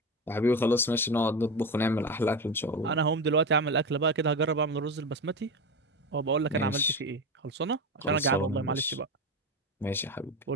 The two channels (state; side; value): normal; both; correlation 0.20